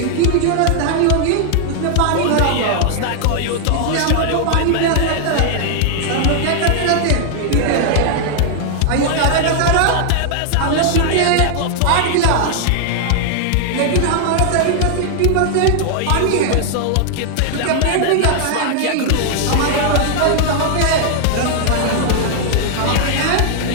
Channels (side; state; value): both; different; correlation 0.00